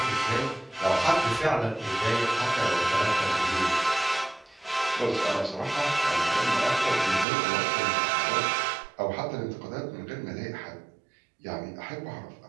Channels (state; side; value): drops out; left; at 7.2 s